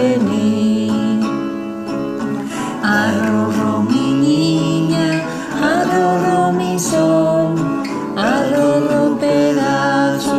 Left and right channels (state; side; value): identical; both; correlation 1.00